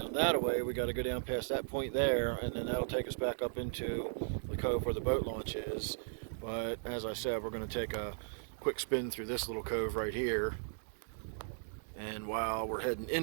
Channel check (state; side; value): silent; left; 53 dB below the other